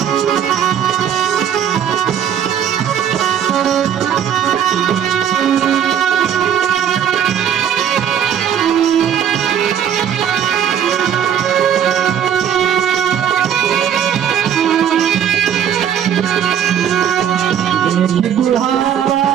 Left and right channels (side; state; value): left; quieter; 9.1 dB